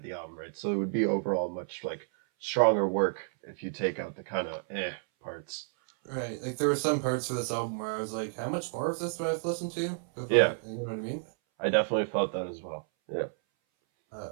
the album, right? So it would be overall much, like, stronger work if you take out the kind of parts. Right, like there were some parts of this album where I was like, how much more of this do I have to listen to? Yeah, You know what I mean? I definitely felt that as well. Yeah.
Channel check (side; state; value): left; silent; 57 dB below the other